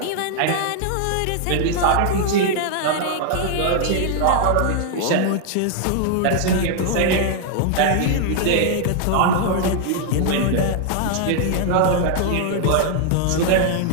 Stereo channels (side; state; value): both; different; correlation -0.01